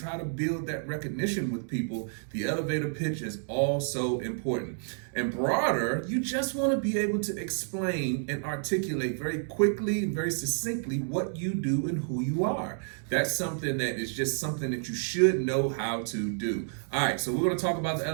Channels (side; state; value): left; silent; 58 dB below the other